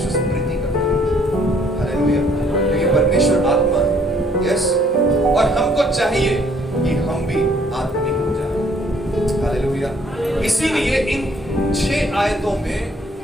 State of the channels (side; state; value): both; normal; correlation 0.63